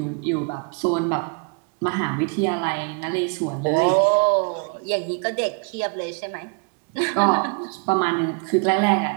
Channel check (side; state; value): left; quieter; 35.6 dB